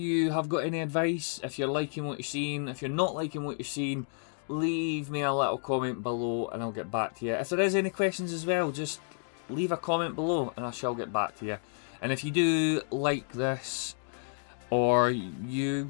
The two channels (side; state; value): right; silent; 57 dB below the other